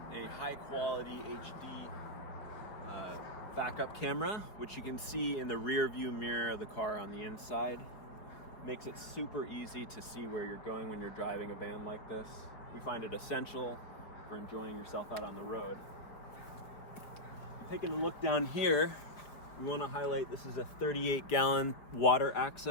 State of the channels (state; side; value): late; right; 4.8 ms